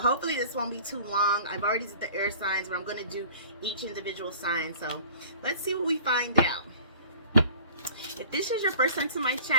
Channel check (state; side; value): inverted; both; correlation -0.46